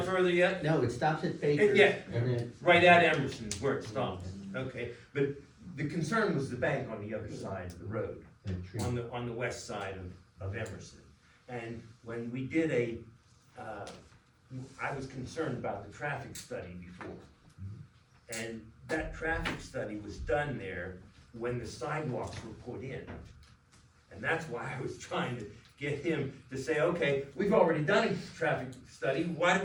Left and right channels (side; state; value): both; identical; correlation 1.00